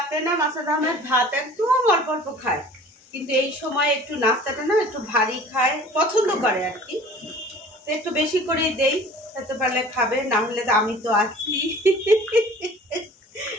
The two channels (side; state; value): both; normal; correlation 0.46